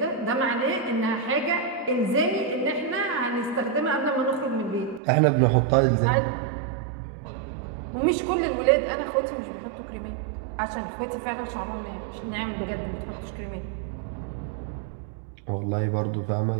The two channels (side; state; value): left; drops out; at 5.0 s